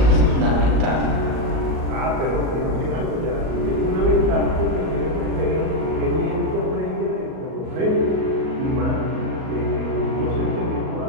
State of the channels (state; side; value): late; left; 38 ms